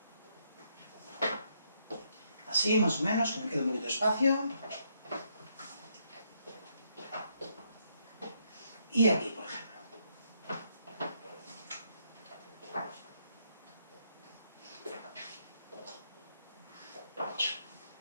así, más o menos, que me quede un poquito de espacio. Y aquí, por ejemplo.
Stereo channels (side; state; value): both; inverted; correlation -0.75